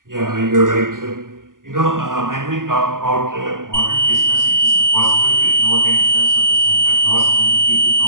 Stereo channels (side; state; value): left; late; 0.90 ms